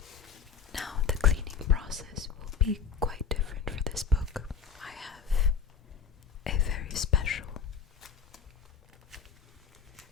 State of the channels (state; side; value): quieter; right; 6.4 dB